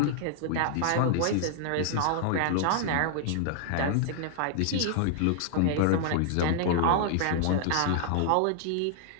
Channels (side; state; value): both; different; correlation -0.01